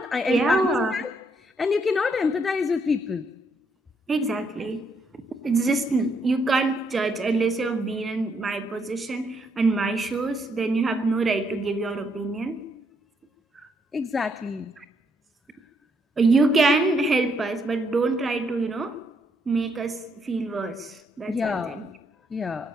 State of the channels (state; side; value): normal; both; correlation 0.74